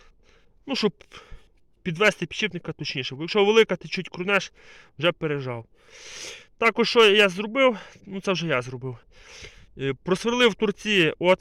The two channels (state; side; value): identical; both; correlation 1.00